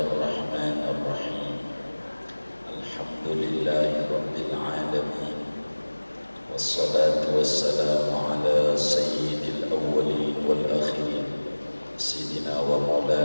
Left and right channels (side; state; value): both; inverted; correlation -1.00